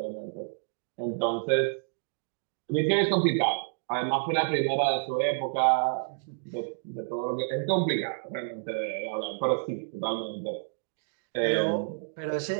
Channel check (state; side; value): silent; left; digital silence